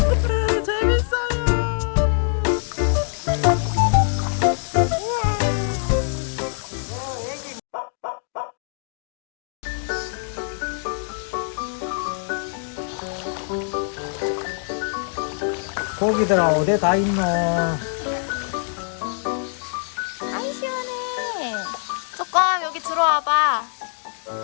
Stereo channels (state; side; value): silent; right; digital silence